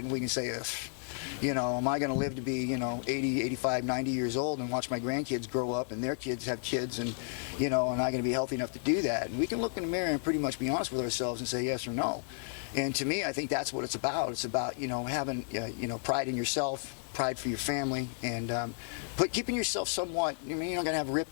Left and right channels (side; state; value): right; silent; digital silence